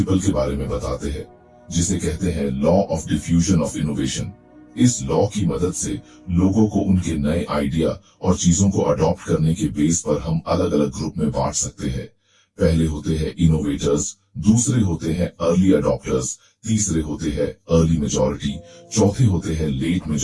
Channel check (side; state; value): both; identical; correlation 1.00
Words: के बारे में बताते हैं, जिसे कहते हैं law of diffusion of innovation. इस लॉ की मदद से लोगों को उनके नए आइडिया और चीजों को अडॉप्ट करने के बेस पर हम अलग अलग ग्रुप में बांट सकते हैं। पहले होते हैं इनोवेटर्स, दूसरे होते हैं अर्ली अडॉप्टर्स, तीसरे होते हैं अर्ली मेजॉरिटी, चौथे होते हैं लेट